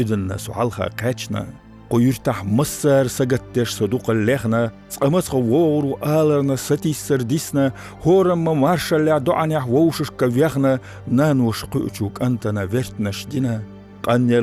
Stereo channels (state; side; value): identical; both; correlation 1.00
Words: سوحالخا قاچنا قيرتح مصر سجتش صدوق اللحنا سقمت غوور وآلرنا ستي سرديسنا هورم مارشا لعدوعني حووشش كفيخنا نانوش قيوشوك أنتنا فيرتنا شدينا